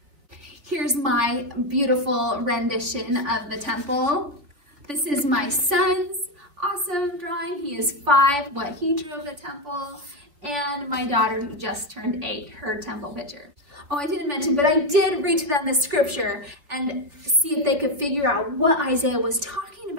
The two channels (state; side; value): late; left; 3.2 ms